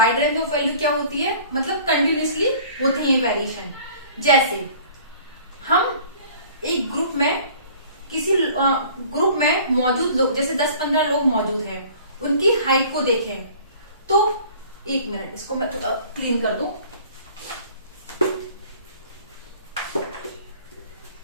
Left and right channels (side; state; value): both; inverted; correlation -0.49